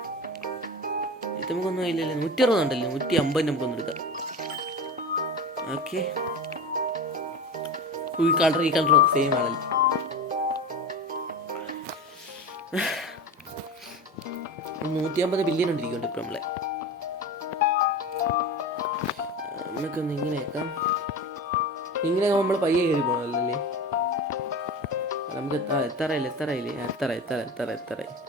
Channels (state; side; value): normal; both; correlation 0.29